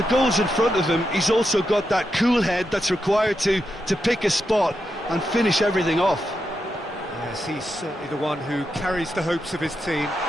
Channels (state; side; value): normal; both; correlation 0.86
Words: goal's in front of him, he's also got that cool head that's required to pick a spot and finish everything off. Yes, he's certainly the one who carries the hopes of his team.